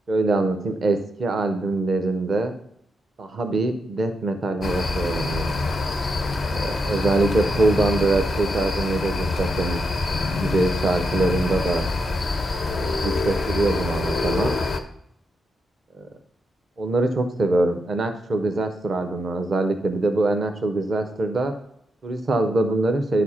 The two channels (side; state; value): both; normal; correlation 0.83